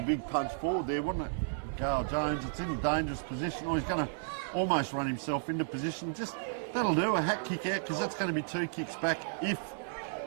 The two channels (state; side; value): silent; left; digital silence